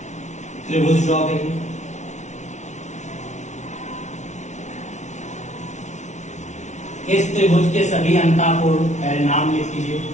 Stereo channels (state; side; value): late; right; 0.34 ms